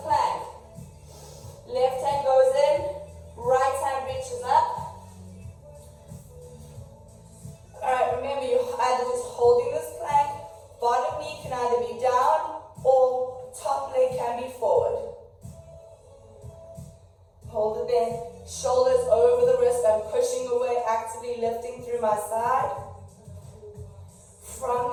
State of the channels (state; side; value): identical; both; correlation 1.00